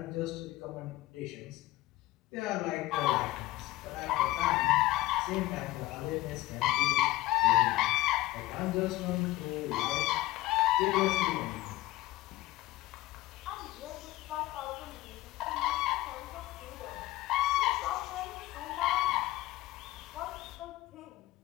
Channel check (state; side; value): quieter; right; 17.5 dB